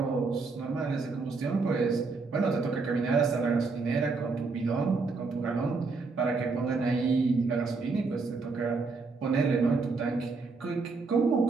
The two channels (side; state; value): left; quieter; 4.2 dB